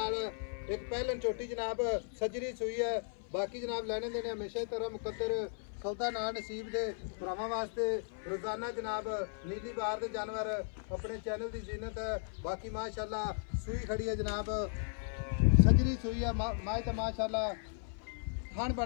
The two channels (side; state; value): right; silent; 54 dB below the other